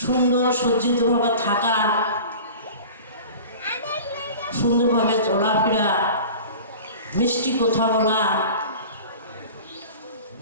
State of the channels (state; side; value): inverted; both; correlation -0.39